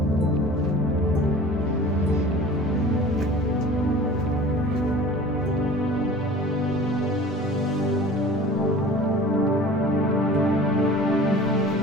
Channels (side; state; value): both; normal; correlation 0.42